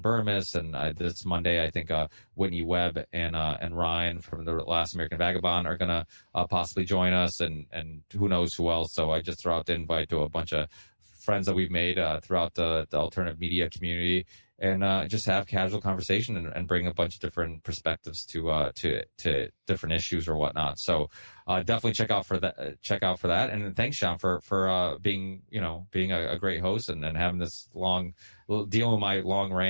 Burmis, and this Monday I think Whitney Webb and Ryan from the Last American Vagabond are gonna possibly join us, and who knows who else. So I just throw out the invite to a bunch of friends that we've made throughout the alternative media community, and just have casual conversation and bring a bunch of different perspectives to different issues or whatnot. So definitely check out for that. And thanks, Sean, for being a great host and having this long, dealing with my long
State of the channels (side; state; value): both; inverted; correlation -1.00